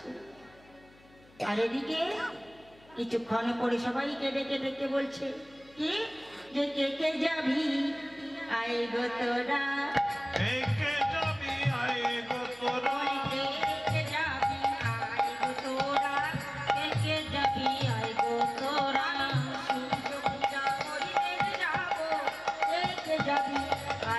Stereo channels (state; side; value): noise; left; hum, 27 dB below the sound